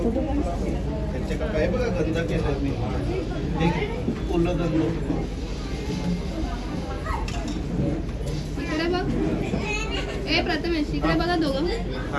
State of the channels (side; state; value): both; identical; correlation 1.00